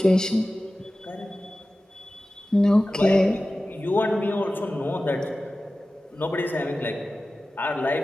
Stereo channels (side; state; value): both; normal; correlation 0.96